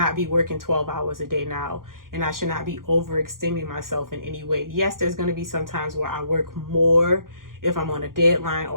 be working 12 hours a day now, and I should not be overextending myself in any way. Yes, there's going to be some times where I work more if I'm on a deadline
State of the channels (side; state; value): left; late; 0.91 ms